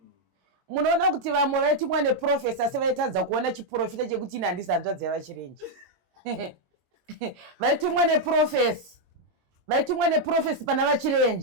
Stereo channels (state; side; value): late; left; 22 ms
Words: Munoona kuti vamwe vaitumwa neprofesa asi vaitadza kuona chiprofita chekuti ini handisi hanzvadzi yavaChirenje. Vaitumwa neprofesi pana